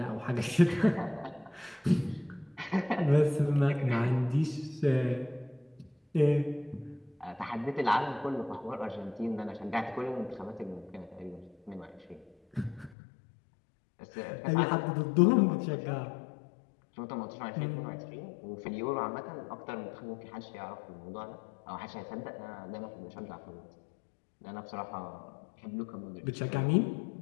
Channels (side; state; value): right; drops out; at 13.0 s